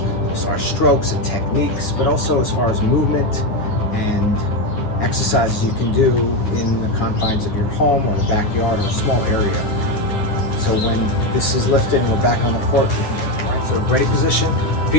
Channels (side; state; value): right; late; 9.7 ms